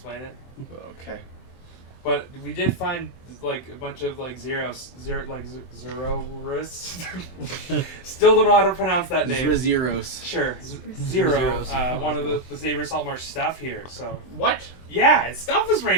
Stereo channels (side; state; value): right; late; 23 ms